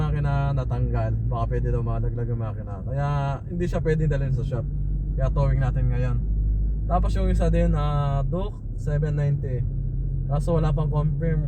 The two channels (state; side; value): identical; both; correlation 1.00